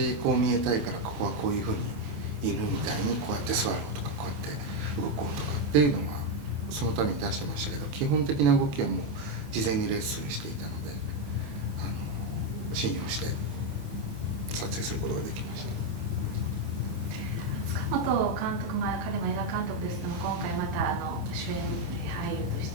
こう見えたいからここはこういうふうに犬みたいにこうやって座ろうとかこうやって動こうとかっていうのはそのために出してましたけど、基本的な動きはもう事前にレッスンしていたので信用して撮影することができました。塚本監督、彼も映画監督ですけども、今回また主演俳優とし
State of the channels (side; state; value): left; late; 28 ms